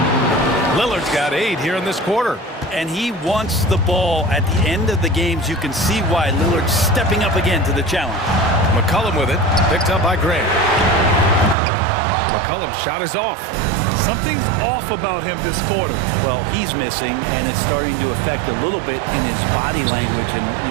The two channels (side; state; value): left; drops out; at 11.6 s